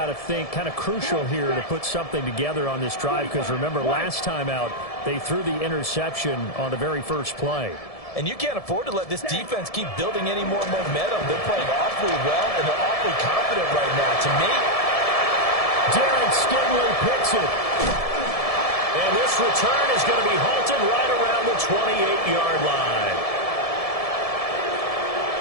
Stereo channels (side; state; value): right; late; 1.7 ms